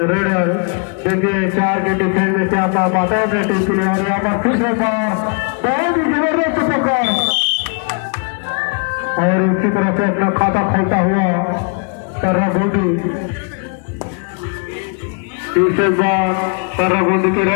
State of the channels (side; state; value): right; quieter; 38.9 dB